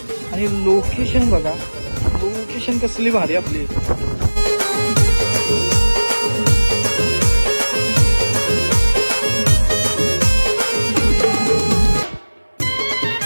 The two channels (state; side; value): inverted; both; correlation -1.00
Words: आणि लोकेशन बघा, लोकेशन कसली भारी आपली.